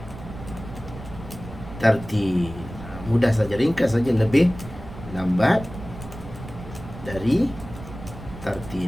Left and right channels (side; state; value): right; noise; rumble, 13 dB below the sound